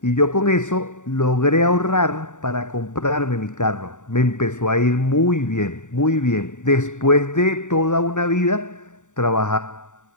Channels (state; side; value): late; right; 0.86 ms